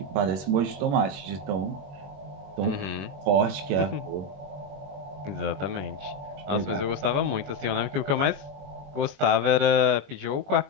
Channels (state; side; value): late; left; 21 ms